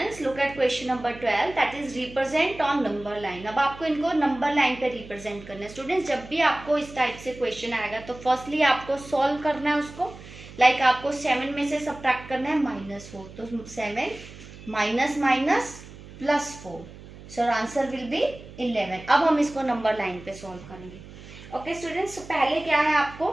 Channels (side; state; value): right; noise; hum, 17 dB below the sound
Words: look at question number 12, that is represent on number line. अब आपको इनको number line पे represent करना है। Students, जब भी आपको इस टाइप से क्वेश्चन आएगा तो फर्स्टली आपको सॉल्व करना है उसको। लाइक आपको 7 में से सब्ट्रैक्ट करना है -4, तो 7 minus minus +4, so answer will B 11। अब हम इसको नंबर लाइन पे सॉल्व करेंगे। ओके स्टूडेंट्स, पहले क्या है आपको